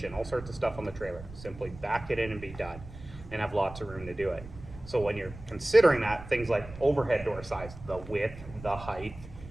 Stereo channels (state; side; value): noise; right; rumble, 15 dB below the sound